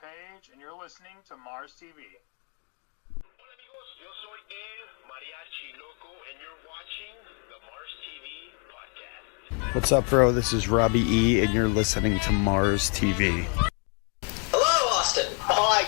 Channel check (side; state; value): right; quieter; 38.3 dB